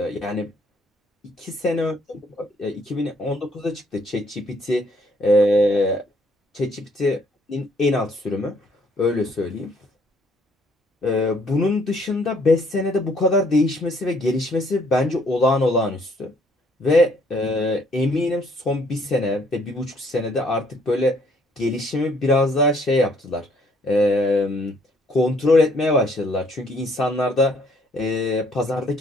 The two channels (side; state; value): both; normal; correlation 0.65